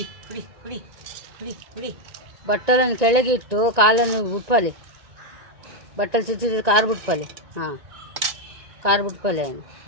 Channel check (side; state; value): left; late; 1.8 ms